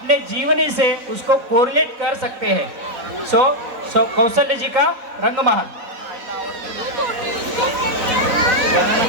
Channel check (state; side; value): late; left; 4.0 ms